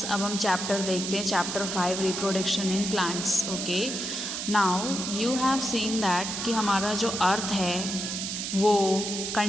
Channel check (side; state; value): right; noise; hiss, 4 dB below the sound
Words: अब हम chapter देखते हैं, chapter 5 reproduction in plants. Okay, now you have seen that कि हमारा जो अर्थ है वो